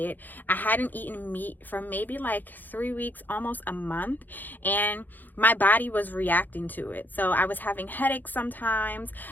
I hadn't eaten meat for maybe like 3 weeks, almost a month, and my body was reacting to it. So I was having headaches sometimes.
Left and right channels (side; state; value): right; late; 0.086 ms